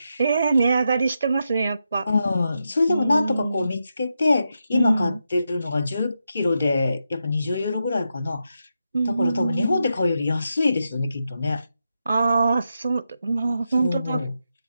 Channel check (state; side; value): inverted; both; correlation -0.86